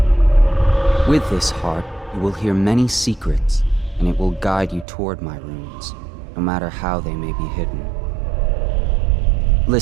With this heart, you will hear many secrets, and it will guide you toward my runes, no matter how they may be hidden.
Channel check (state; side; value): drops out; left; at 4.9 s